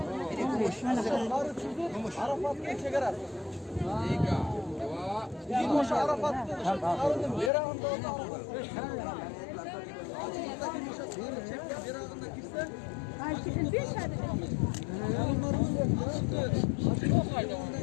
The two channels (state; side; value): drops out; right; at 7.5 s